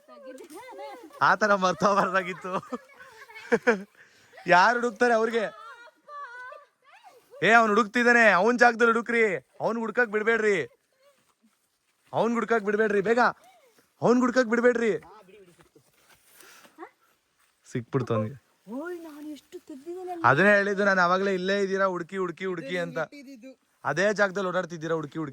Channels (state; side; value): identical; both; correlation 1.00